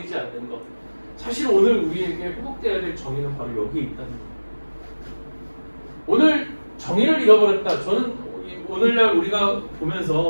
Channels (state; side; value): inverted; both; correlation -1.00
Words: 않는 것. 사실 오늘 우리에게 회복되어야 될 정의는 바로 여기에 있다는 거예요. 오늘 정의를 잃어버렸다. 저는 오늘날 우리가